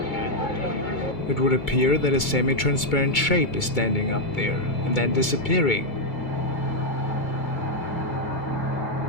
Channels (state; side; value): late; right; 2.2 ms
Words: It would appear that a semi-transparent shape is standing up there, and then disappearing.